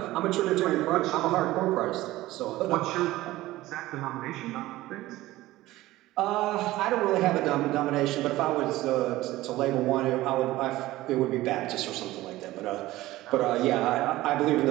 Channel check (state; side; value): quieter; left; 17.1 dB